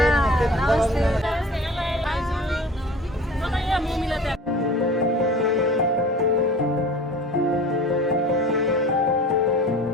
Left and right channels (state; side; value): normal; both; correlation 0.41